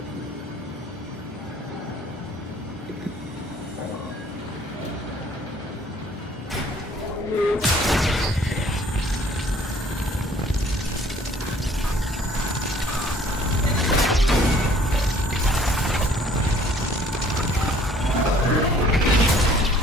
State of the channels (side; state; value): both; normal; correlation 0.57